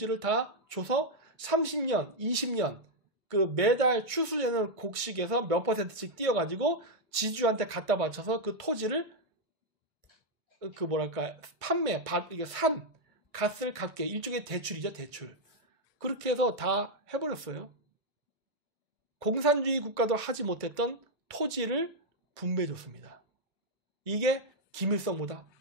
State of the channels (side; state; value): left; late; 1.5 ms